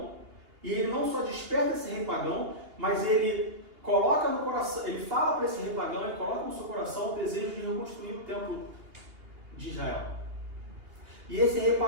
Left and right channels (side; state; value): left; late; 2.8 ms